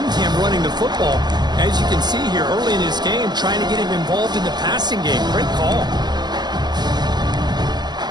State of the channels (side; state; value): left; late; 0.21 ms